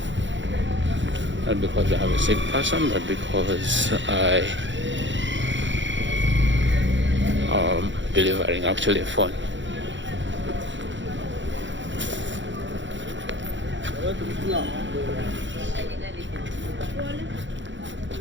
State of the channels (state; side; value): late; left; 0.54 ms